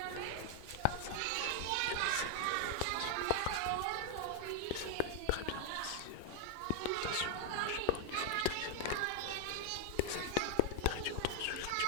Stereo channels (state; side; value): different; both; correlation 0.00